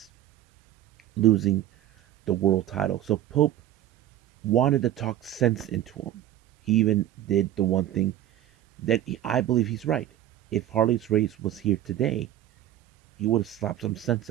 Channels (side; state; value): left; quieter; 12.5 dB